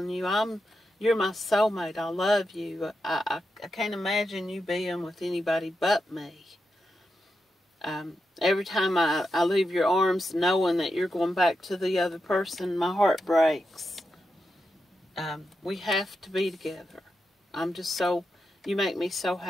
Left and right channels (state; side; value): normal; both; correlation 0.87